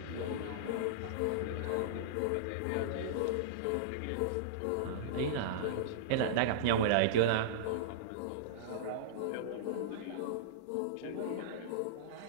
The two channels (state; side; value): different; both; correlation -0.03